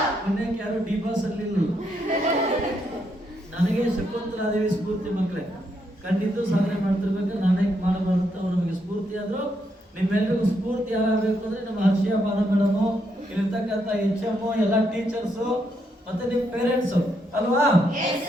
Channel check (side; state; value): both; normal; correlation 0.78